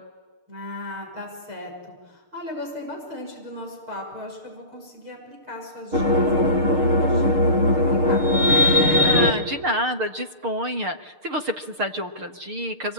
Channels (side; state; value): left; late; 6.6 ms